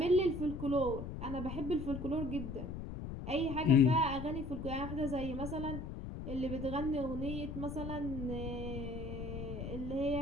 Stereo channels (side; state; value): left; noise; rumble, 7 dB below the sound